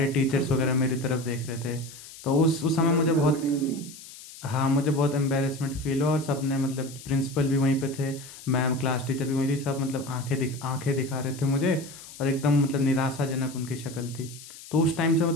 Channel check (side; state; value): left; noise; hiss, 16 dB below the sound